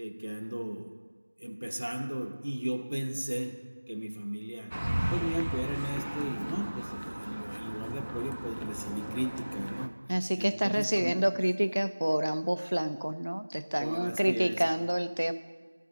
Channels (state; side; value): inverted; both; correlation -1.00